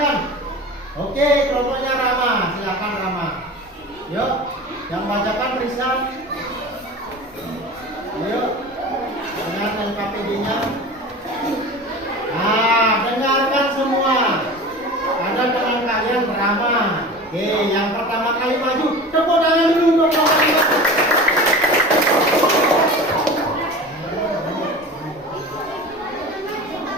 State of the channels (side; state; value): both; normal; correlation 0.34